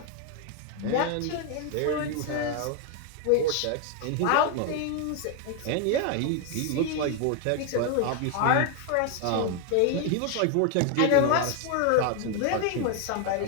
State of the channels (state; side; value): different; both; correlation 0.01